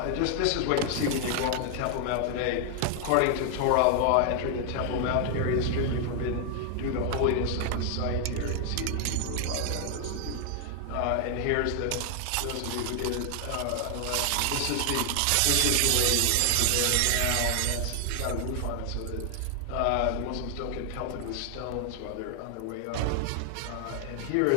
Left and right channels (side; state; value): both; different; correlation 0.00